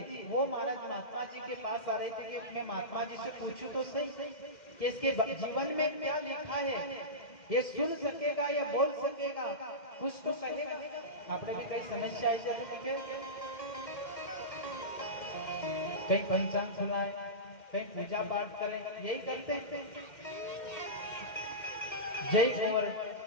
वो महाराज महात्मा जी के पास आ रहे थे कि मैं महात्मा जी से पूछूं तो सही कि इसके जीवन में क्या लिखा है, ये सुन सकेगा या बोल सकेगा, कुछ तो कहेगा। आपने भी कई समस्या आई जब लिखे, कहीं पंचांग सुनाए, कहीं पूजा पाठ करें, यही करते हैं। जय कुंवर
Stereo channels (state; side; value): late; right; 2.1 ms